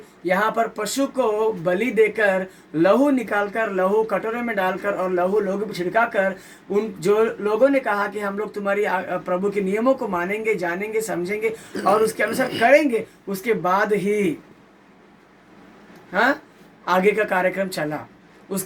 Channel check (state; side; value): identical; both; correlation 1.00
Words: यहाँ पर पशु को बलि देकर लहू निकालकर, लहू कटोरे में डालकर और लहू लोगों पर छिड़काकर, उन जो लोगों ने कहा कि हम लोग तुम्हारी प्रभु के नियमों को मानेंगे, जानेंगे, समझेंगे और उसके अनुसार करेंगे, उसके बाद ही आगे का कार्यक्रम चला।